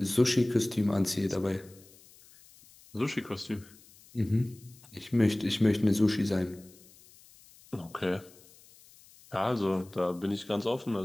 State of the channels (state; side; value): noise; left; hiss, 25 dB below the sound